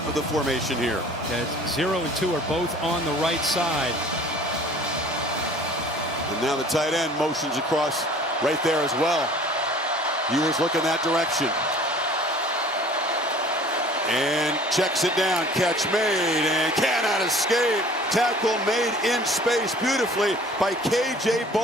of the formation here. Yeah, 0 and 2 are both on the right side. And now the tight end motions across right there as well. Ewers looking that direction. And checks it down. Catch made and cannot escape. Tackle made in space beautifully by K.J.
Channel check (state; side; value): normal; both; correlation 0.49